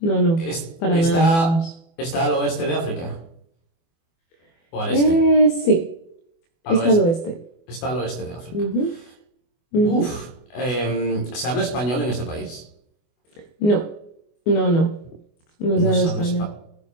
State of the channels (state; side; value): late; right; 24 ms